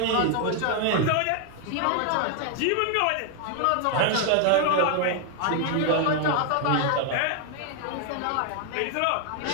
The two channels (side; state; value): both; different; correlation 0.00